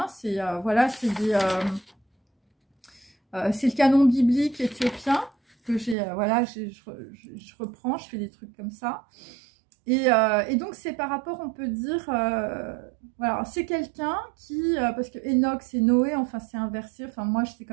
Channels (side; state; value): left; drops out; at 6.0 s